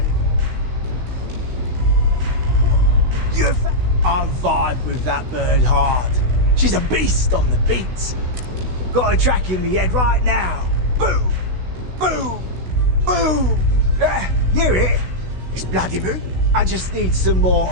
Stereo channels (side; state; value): left; late; 16 ms